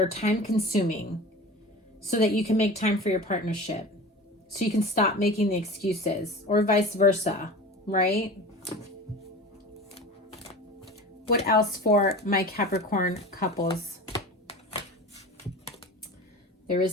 time consuming, so that you can make time for your partnership, so you can stop making the excuses, or vice versa, right? What else for my Capricorn couples? There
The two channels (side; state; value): both; normal; correlation 0.35